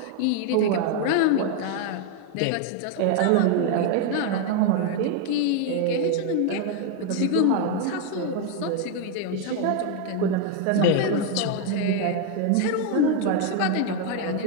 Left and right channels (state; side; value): different; both; correlation 0.01